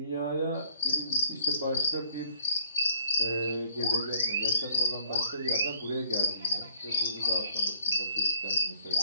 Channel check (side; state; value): both; inverted; correlation -0.57